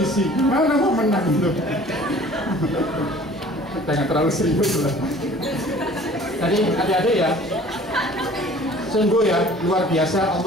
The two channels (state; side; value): normal; both; correlation 0.49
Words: Mana mau menang itu? Jangan terlalu serius lah. Jadi adik-adik ya, sungguh ya luar biasa